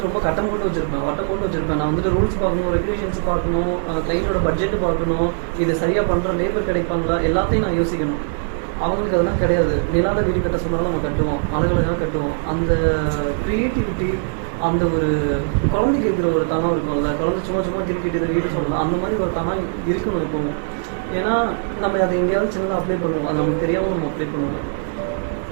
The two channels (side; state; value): left; silent; digital silence